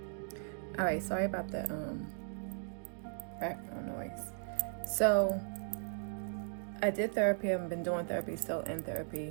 All right, sorry about the background noise. So I did therapy. I've been doing therapy, still in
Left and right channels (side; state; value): left; silent; digital silence